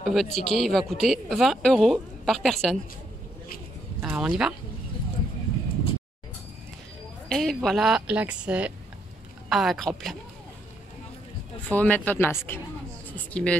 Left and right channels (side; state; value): both; normal; correlation 0.75